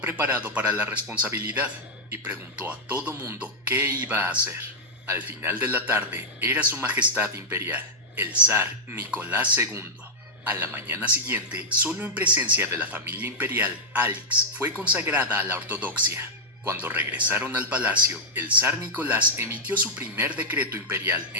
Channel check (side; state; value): both; normal; correlation -0.05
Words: preparado para la responsabilidad y preguntó a todo mundo qué iba a hacer. Al final de la tarde, era su majestad imperial, el zar Nicolás II. A la mañana siguiente, solo en presencia de la familia imperial, Alix fue consagrada a la ortodoxia. Cuando regresaron al palacio, el zar Nicolás emitió su primer decreto imperial